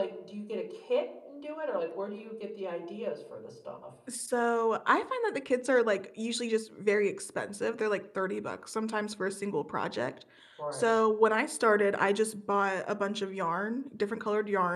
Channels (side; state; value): both; identical; correlation 1.00